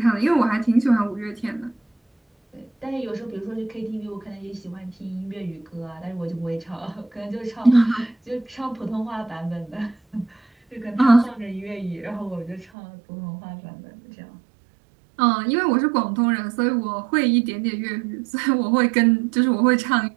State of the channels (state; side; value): drops out; left; at 12.7 s